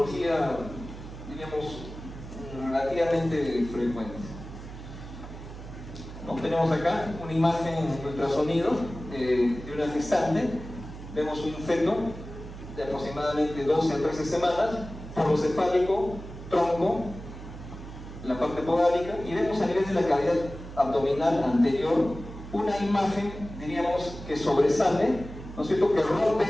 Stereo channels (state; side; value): noise; right; hum, 12 dB below the sound